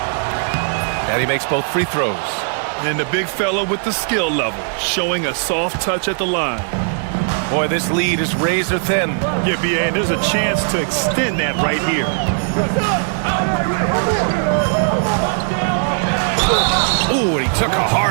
And he makes both free throws. And the big fella with the skill level, showing a soft touch at the line. Boy, this lead is razor thin. Yeah, BA, and there's a chance to extend that right here. Ooh, and he took a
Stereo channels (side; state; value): left; silent; 63 dB below the other